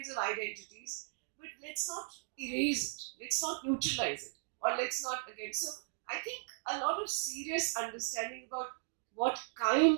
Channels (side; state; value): left; silent; digital silence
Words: of identities, but let's not erase it, let's not neutralize it, or let's not again. So I think a lot of serious understanding about what kind